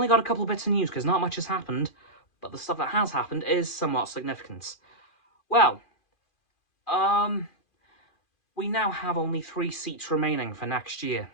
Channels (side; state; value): right; late; 2.4 ms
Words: got a couple of bits of news because not much has happened, but the stuff that has happened is somewhat significant. Well, we now have only 3 seats remaining for next year.